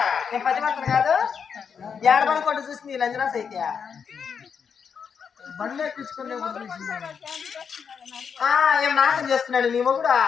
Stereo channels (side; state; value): right; quieter; 6.7 dB